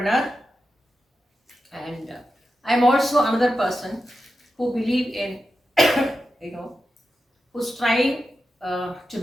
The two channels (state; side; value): normal; both; correlation 0.90